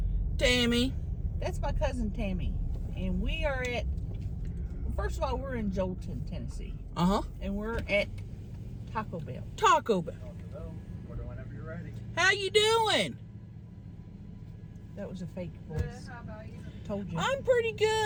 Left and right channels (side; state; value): both; identical; correlation 1.00